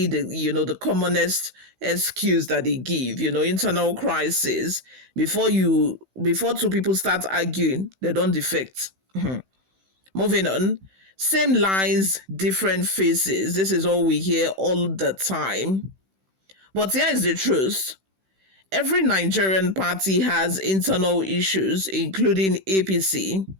the commonest excuse that they give. Internal crisis. Before two people start arguing, they don't defect. Moving on. Same lines, different faces. This is all we hear all the time. But here is the truth. Every Nigerian party has internal issues, including APC.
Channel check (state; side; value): late; left; 16 ms